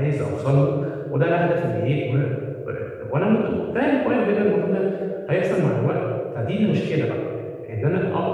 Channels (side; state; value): both; identical; correlation 1.00